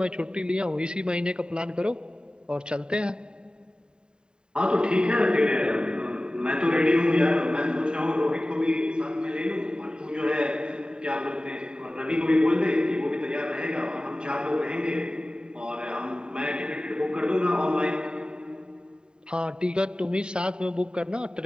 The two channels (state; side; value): late; left; 0.048 ms